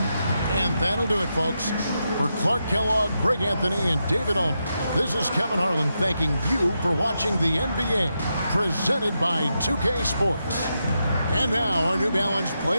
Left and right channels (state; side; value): inverted; both; correlation -0.85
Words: And that'll do it, folks. For Clark Kellogg, Greg Anthony, and David Aldridge, this is Kevin Harlan thanking you for watching the NBA, presented by 2K Sports. And now, our New Balance